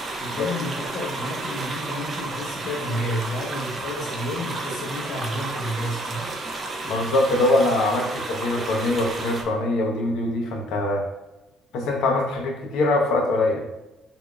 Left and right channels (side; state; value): both; normal; correlation 0.61